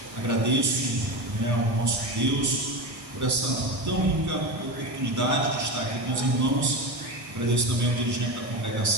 Agradeço ao nosso Deus por essa tão rica oportunidade de estar aqui com os irmãos. Agradeço também ao dirigente da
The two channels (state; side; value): late; left; 1.6 ms